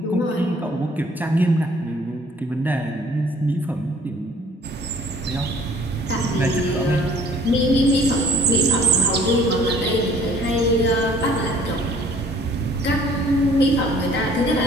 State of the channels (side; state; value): both; normal; correlation 0.55